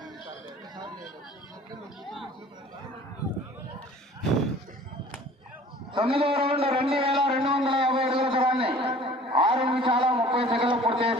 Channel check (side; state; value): both; normal; correlation 0.48